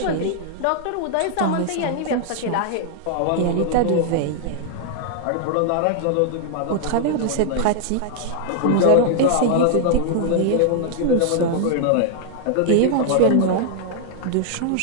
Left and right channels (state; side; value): different; both; correlation -0.01